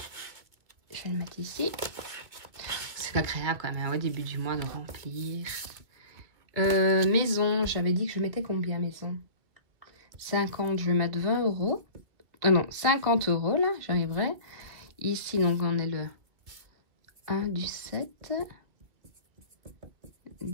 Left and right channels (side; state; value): left; late; 2.1 ms